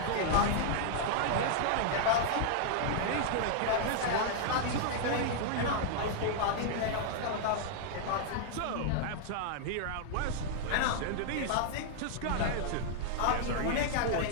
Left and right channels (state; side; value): different; both; correlation -0.01